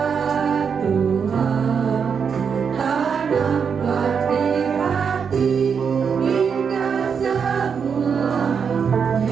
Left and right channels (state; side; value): quieter; left; 6.5 dB